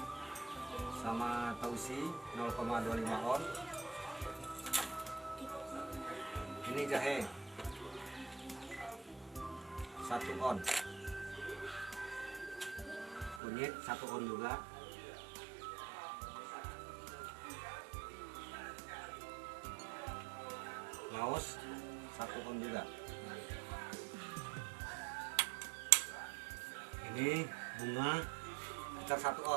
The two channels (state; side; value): drops out; left; at 13.4 s